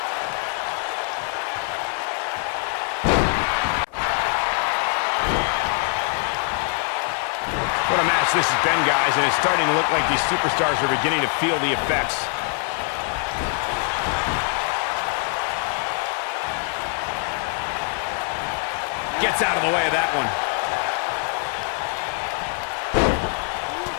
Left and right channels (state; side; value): quieter; right; 39.4 dB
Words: What a match this has been, guys, and it's starting to look like these superstars are beginning to feel the effects. Gets out of the way of that one.